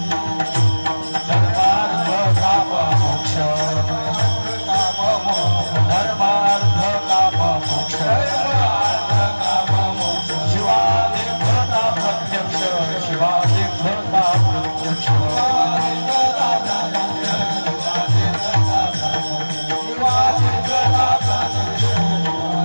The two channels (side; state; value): both; inverted; correlation -1.00